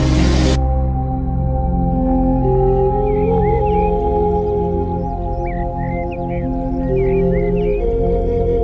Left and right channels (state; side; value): identical; both; correlation 1.00